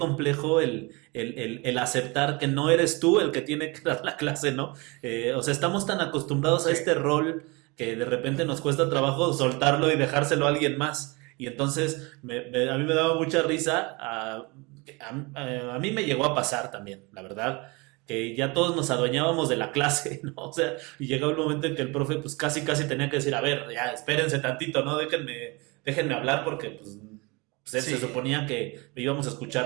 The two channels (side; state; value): left; quieter; 26.9 dB